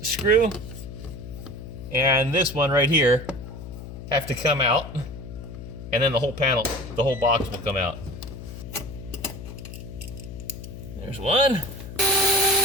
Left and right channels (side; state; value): left; noise; hum, 11 dB below the sound